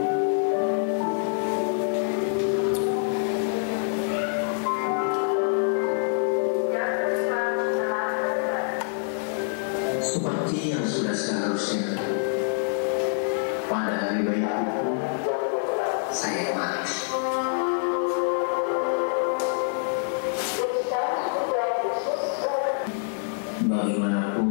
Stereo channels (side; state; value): right; silent; 61 dB below the other